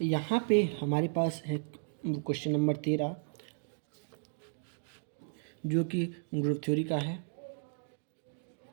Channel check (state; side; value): silent; left; digital silence